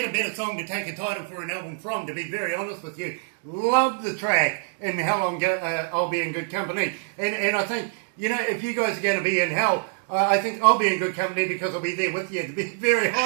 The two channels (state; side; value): silent; left; digital silence